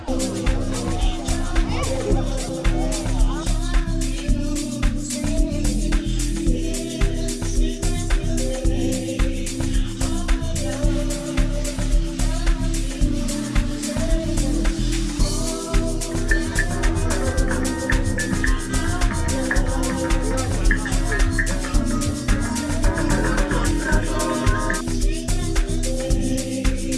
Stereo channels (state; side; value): identical; both; correlation 1.00